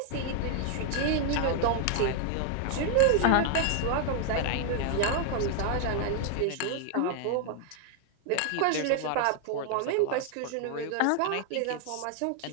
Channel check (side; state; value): both; different; correlation 0.00